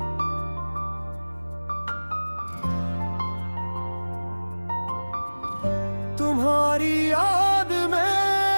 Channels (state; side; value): inverted; both; correlation -1.00